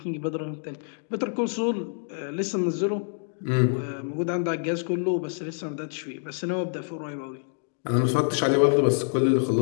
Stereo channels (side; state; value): right; silent; digital silence